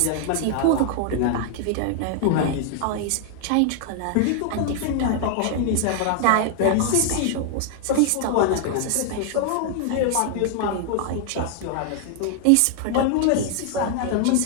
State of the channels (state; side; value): different; both; correlation 0.00